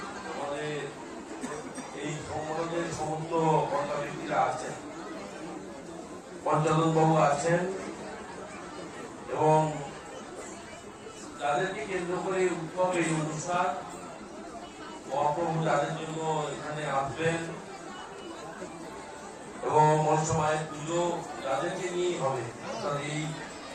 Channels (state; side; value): identical; both; correlation 1.00